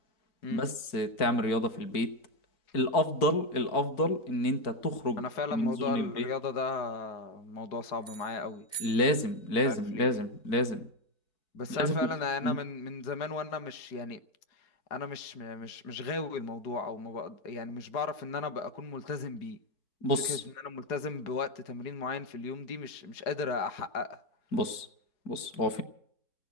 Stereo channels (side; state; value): right; late; 4.5 ms